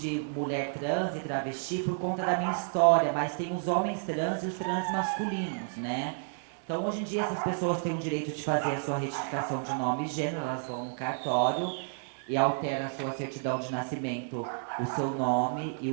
mulher trans e travesti por conta da minha história, mas tem os homens trans e os trans masculinos, né? Então, hoje em dia, essas pessoas têm o direito de fazer a sua retificação de nome e gênero, elas vão no cartório e altera a sua certidão de nascimento, o seu nome e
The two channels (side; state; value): left; silent; digital silence